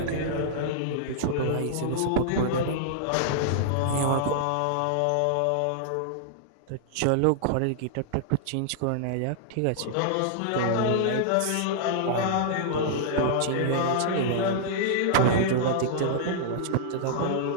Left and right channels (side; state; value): both; different; correlation -0.02